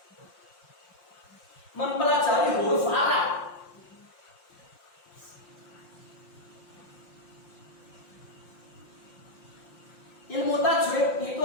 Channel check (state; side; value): late; right; 5.7 ms